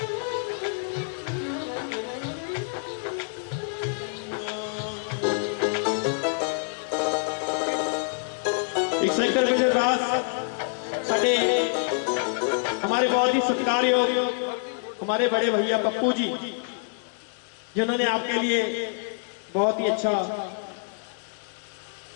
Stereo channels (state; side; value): silent; right; digital silence